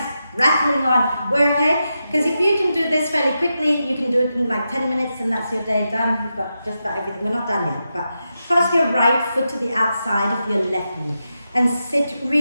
rattling on. We're okay? Because if you can do this fairly quickly, you can do it in like 10 minutes and that's your day done. You've got just about everything. We're not done yet, but cross your right foot to the outside of your left knee and sit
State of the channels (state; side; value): inverted; both; correlation -0.88